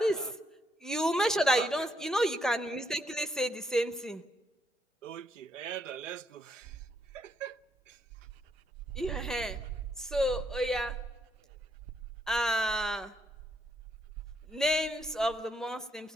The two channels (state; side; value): normal; both; correlation 0.75